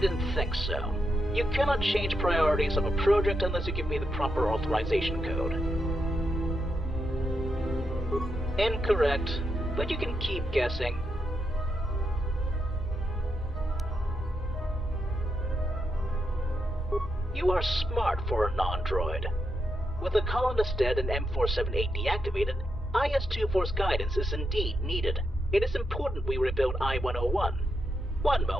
think so. You cannot change priorities of a project unless you give me the proper authorization code. Incorrect, but you can keep guessing. You are smart for a non-droid. With the colonist dead and M478 deactivated, IS-2 guidance is indeed needed. It is important we rebuild I-101. One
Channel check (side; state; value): both; normal; correlation 0.83